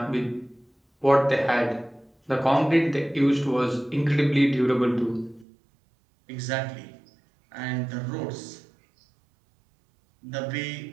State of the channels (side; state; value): left; drops out; at 5.5 s